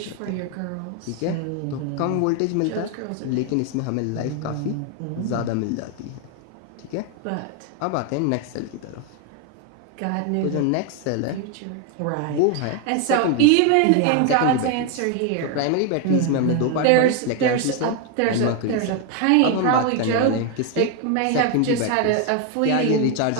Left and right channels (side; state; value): both; different; correlation 0.01